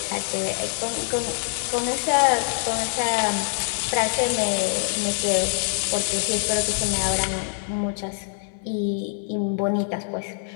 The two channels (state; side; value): silent; right; 62 dB below the other